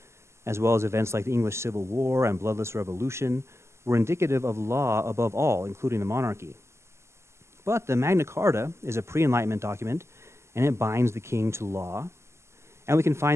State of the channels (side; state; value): left; late; 0.13 ms